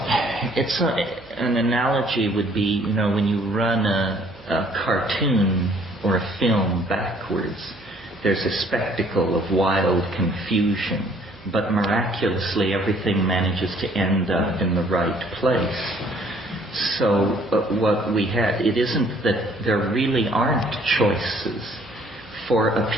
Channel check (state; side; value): noise; right; hum, 25 dB below the sound